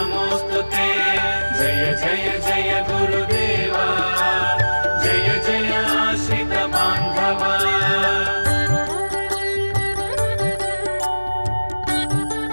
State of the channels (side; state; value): both; inverted; correlation -1.00